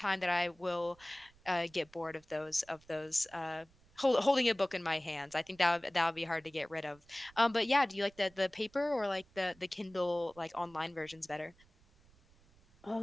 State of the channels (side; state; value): right; noise; rumble, 28 dB below the sound